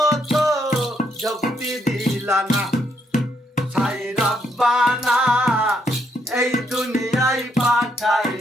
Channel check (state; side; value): normal; both; correlation 0.75